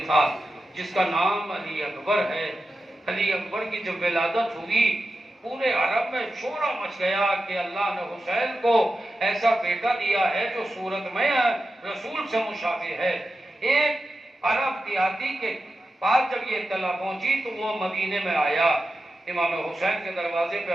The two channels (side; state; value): both; normal; correlation 0.91